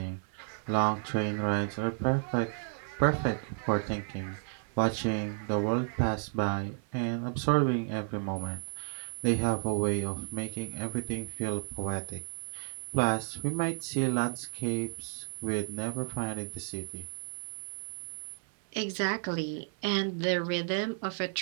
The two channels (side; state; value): left; silent; 56 dB below the other